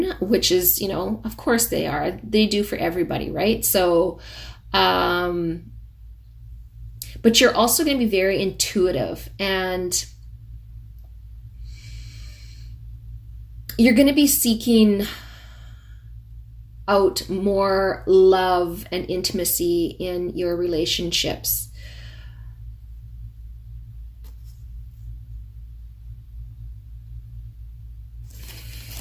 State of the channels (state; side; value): identical; both; correlation 1.00